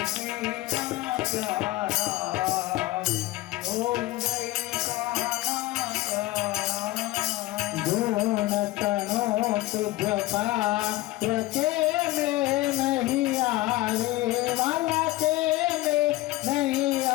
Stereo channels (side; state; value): right; quieter; 18.1 dB